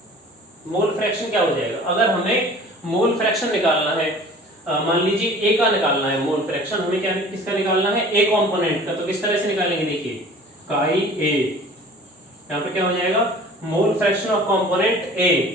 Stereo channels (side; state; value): both; normal; correlation 0.46